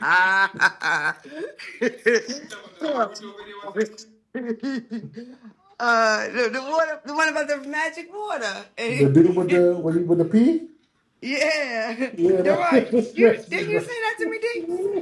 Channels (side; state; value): both; identical; correlation 1.00